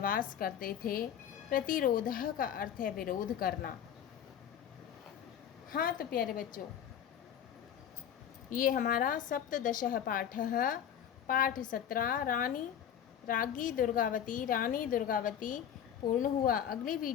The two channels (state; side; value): quieter; right; 9.3 dB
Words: करते थे, प्रतिरोधः का अर्थ है विरोध करना। हाँ तो प्यारे बच्चों, ये हमारा सप्तदशः पाठः पाठ 17 राज्ञी दुर्गावती पूर्ण हुआ। अगली